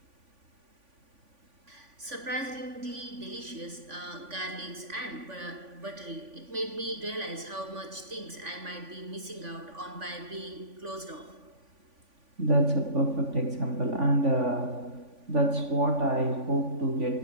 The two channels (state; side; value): late; left; 3.5 ms